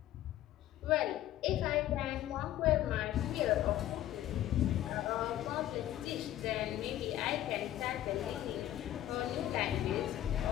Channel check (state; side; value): quieter; right; 13.1 dB